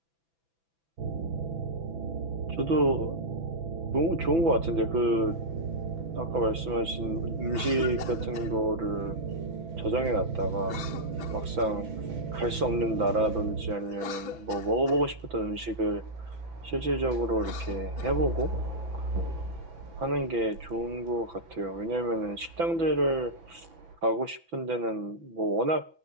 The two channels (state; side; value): late; left; 6.0 ms